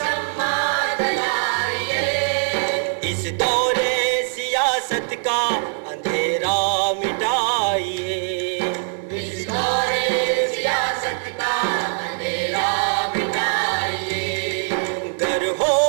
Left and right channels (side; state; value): left; silent; digital silence